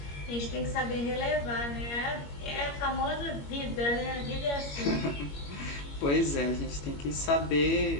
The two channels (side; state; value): right; late; 21 ms